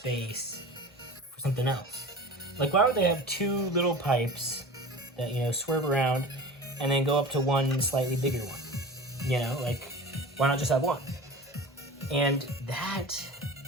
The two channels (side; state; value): both; normal; correlation 0.35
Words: for something else. Like, why would they have two little pipes that swerve around and then go up to one slightly bigger one? Like, why not just have one? And that